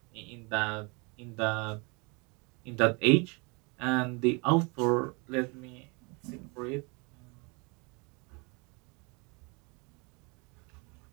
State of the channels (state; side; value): quieter; left; 30.1 dB